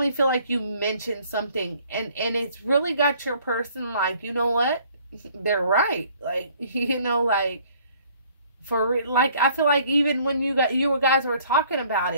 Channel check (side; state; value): both; inverted; correlation -0.59